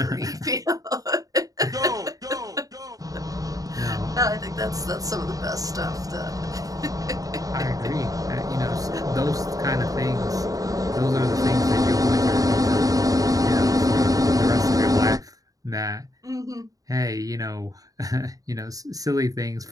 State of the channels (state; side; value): late; left; 0.17 ms